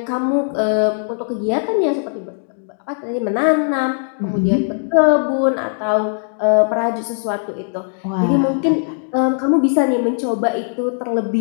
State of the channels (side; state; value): right; silent; digital silence